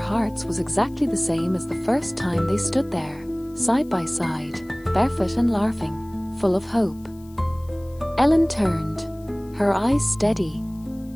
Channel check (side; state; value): left; noise; hiss, 28 dB below the sound